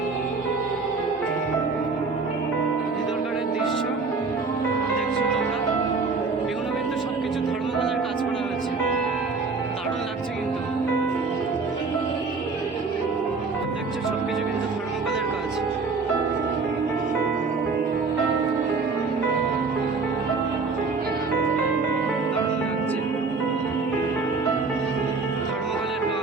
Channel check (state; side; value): quieter; left; 4.3 dB